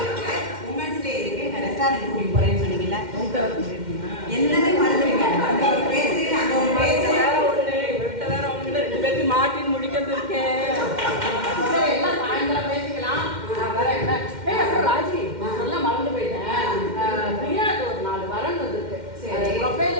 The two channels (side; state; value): left; late; 2.1 ms